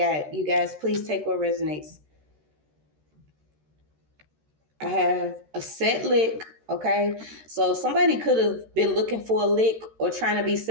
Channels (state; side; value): late; left; 13 ms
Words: You guys, please take what resonates. I have a set lick. Okay, so somebody could have been looking for a lick or trying to be